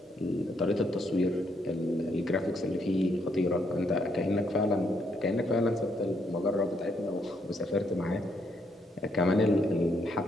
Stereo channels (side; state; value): both; normal; correlation 0.74